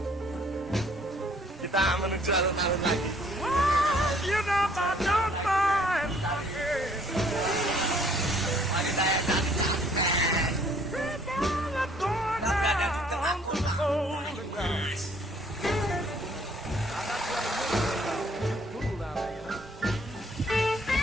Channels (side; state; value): both; normal; correlation 0.61